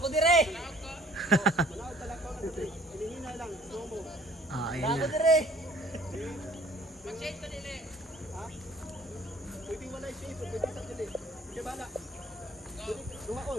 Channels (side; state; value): both; normal; correlation 0.54